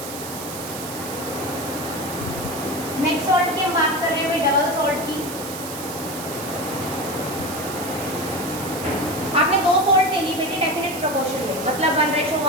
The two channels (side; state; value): right; noise; hiss, 10 dB below the sound